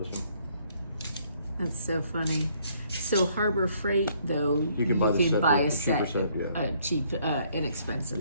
this one. That's so funny. So Harbor Freight, though, you can buy a set, set, yeah. A cheap,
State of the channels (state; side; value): inverted; both; correlation -0.66